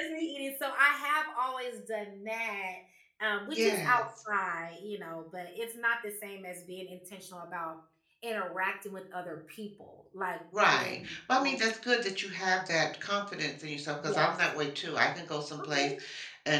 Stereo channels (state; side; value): identical; both; correlation 1.00